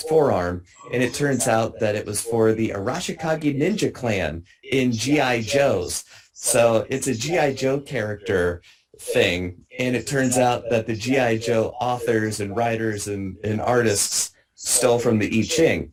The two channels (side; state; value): both; identical; correlation 1.00